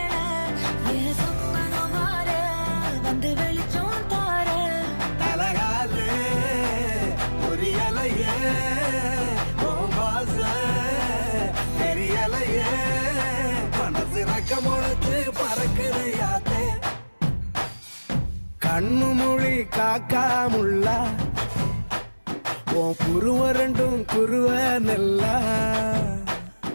என் சொப்பனம் மாற வந்து வெளிச்சம் தார அழகாலே பொரியலையே ஓம்பாச தெரியலையே மனசு ரக்க முளைச்சு பறக்குறையாத்தே கண்ணு மொழி காக்காமுள்ள உன் குருவ ரெண்டும் குருவ நெல்லா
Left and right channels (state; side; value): inverted; both; correlation -1.00